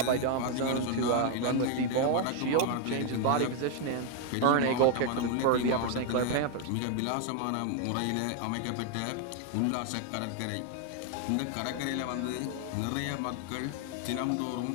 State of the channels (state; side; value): different; both; correlation 0.01